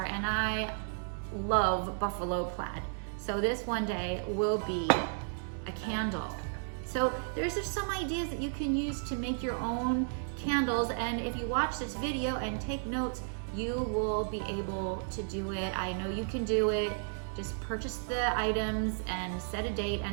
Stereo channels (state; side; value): silent; left; digital silence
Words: and I love buffalo plaid. So this one day will be a candle. So there's just some ideas that you can use to make your own candles, and if you watch this video and take notes, you will be able to do it. I know you can do it. Just purchase the items and set a date